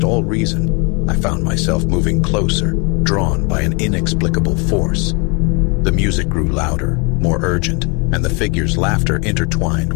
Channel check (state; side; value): quieter; right; 31.9 dB